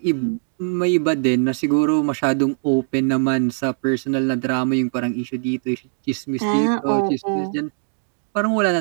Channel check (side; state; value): left; silent; digital silence